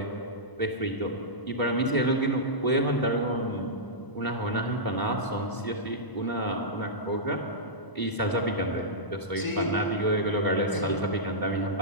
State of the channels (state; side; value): late; right; 1.0 ms